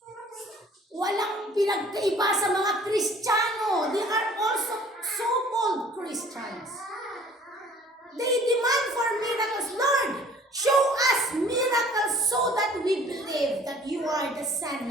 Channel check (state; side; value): normal; both; correlation 0.52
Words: Walang pinagkaiba sa mga Kristiyano. They are also so-called Christians. They demand for miracles. Lord, show us miracles so that we believe that you are the Son